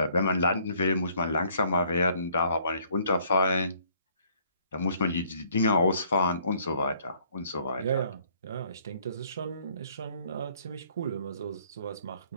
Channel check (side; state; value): both; inverted; correlation -0.63